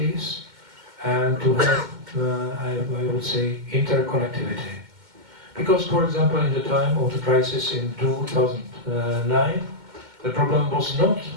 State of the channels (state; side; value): late; left; 2.1 ms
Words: and to have, I would say, interconnectivity. Because, for example, in the time of the crisis in 2009, the problem was not